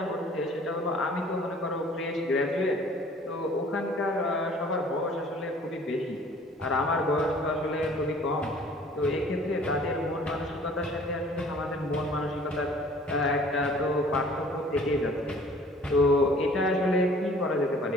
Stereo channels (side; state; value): both; normal; correlation 0.52